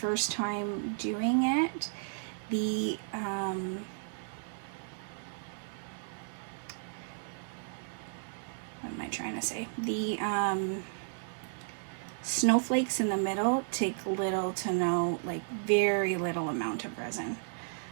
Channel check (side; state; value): left; silent; digital silence